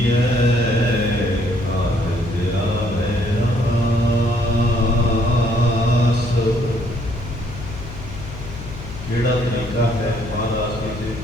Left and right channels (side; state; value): left; noise; hum, 11 dB below the sound